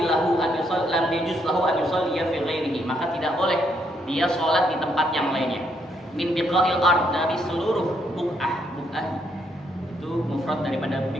lahu an yusalli fi ghairihi, maka tidak boleh dia sholat di tempat yang lainnya. Min biqa'il ard, dari seluruh buq'ah itu mufrad daripada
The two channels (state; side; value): normal; both; correlation 0.74